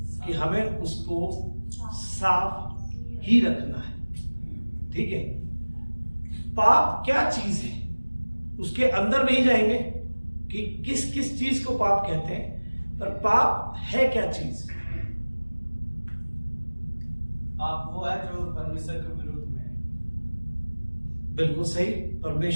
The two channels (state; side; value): inverted; both; correlation -1.00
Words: कि हमें उसको साफ ही रखना है। ठीक है? पाप क्या चीज है उसके अंदर नहीं जाएंगे कि किस किस चीज को पाप कहते हैं, पर पाप है क्या चीज? पाप वो है जो परमेश्वर के विरुद्ध में है। बिल्कुल सही,